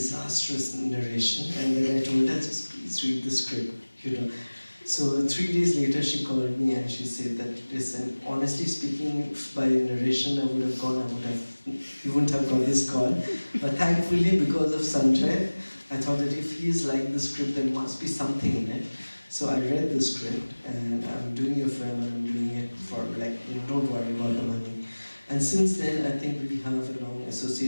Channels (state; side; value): inverted; both; correlation -1.00